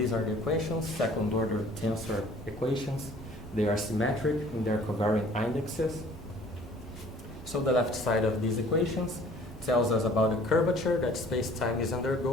are the equations, second-order tensor equations. They are symmetric in their covariant indexes. So the left side of these equations tells us about the curvature that space-time is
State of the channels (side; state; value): both; normal; correlation 0.52